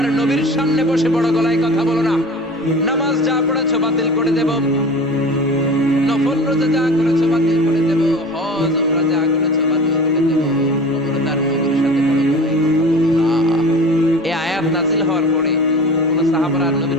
নবীর সামনে বসে বড় গলায় কথা বলো না। নামাজ যা পড়েছো বাতিল করে দেব, নফল রোজা যা করেছো বাতিল করে দেব, হজ উমরা যা করেছো বাতিল করে দেব। খবরদার নবীর সাথে বড় গলায় কথা বলো না। এই আয়াত নাযিল হওয়ার পরে কোন সাহাবারা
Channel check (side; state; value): both; normal; correlation 0.37